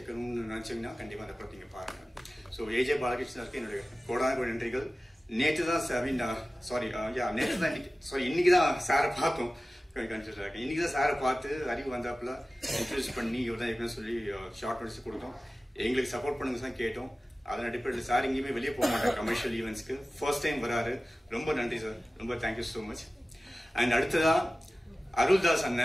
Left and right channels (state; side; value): normal; both; correlation 0.96